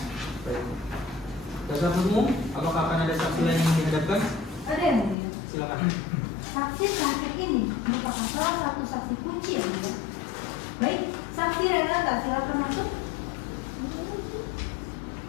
Baik. Dasar umum, apakah akan ada saksi lain yang dihadapkan? Ada yang mulia. Silakan. Saksi terakhir ini merupakan salah satu saksi kunci yang mulia. Baik, saksi Renata silakan masuk.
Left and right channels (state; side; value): drops out; right; at 5.2 s